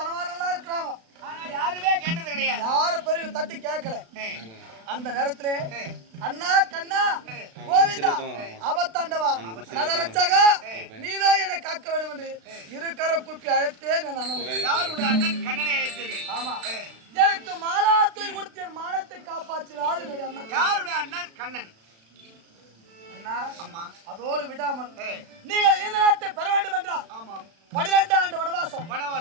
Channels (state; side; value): late; left; 36 ms